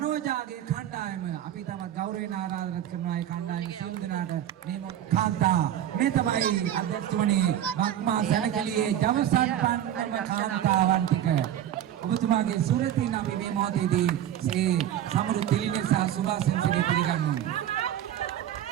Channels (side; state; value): left; quieter; 11.0 dB